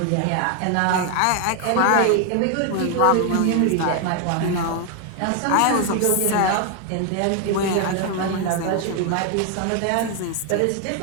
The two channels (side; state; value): both; different; correlation 0.01